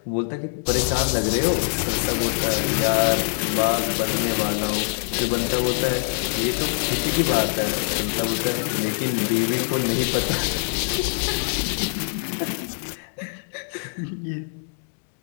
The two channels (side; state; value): right; silent; digital silence